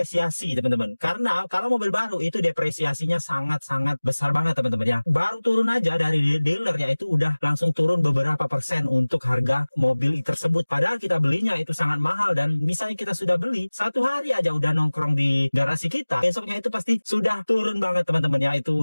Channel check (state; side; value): inverted; both; correlation -1.00